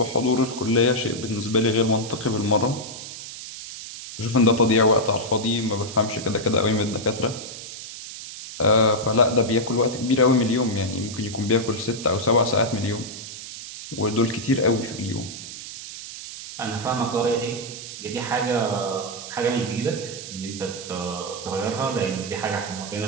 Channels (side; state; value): right; noise; hiss, 11 dB below the sound